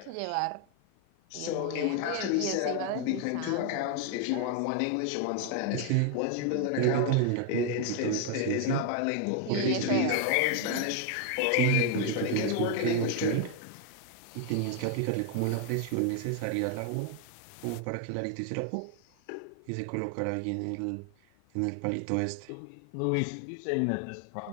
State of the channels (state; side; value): different; both; correlation 0.00